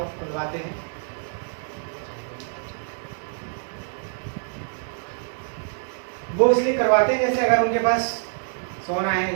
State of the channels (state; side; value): silent; left; 61 dB below the other